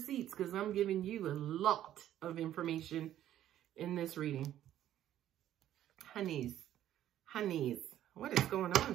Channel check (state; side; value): quieter; left; 12.0 dB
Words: because I'm giving you a lot of information in this reading. Honeys, what is going